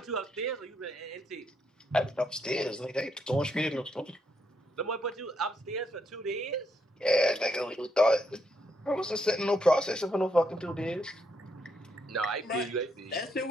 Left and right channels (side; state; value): both; normal; correlation 0.77